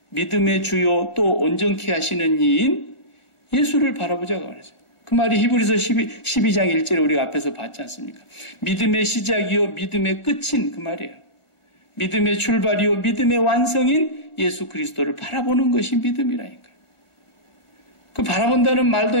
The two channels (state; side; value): late; right; 1.5 ms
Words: 믿음의 주요 또 온전케 하시는 이인 예수를 바라보자고 그랬어요. 그 말이 히브리서 12장 1절에 우리가 앞에서 봤지 않습니까? 믿음의 시작이요 믿음의 끝인 그 말이에요. 믿음의 출발이요 믿음의 완성인 예수 그리스도를 바라보는 것이 믿음이라니까요. 그 바라본다는 말도